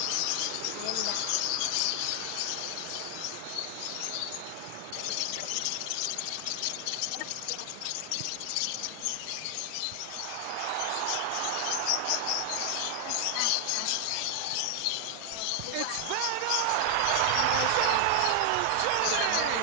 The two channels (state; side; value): different; both; correlation 0.00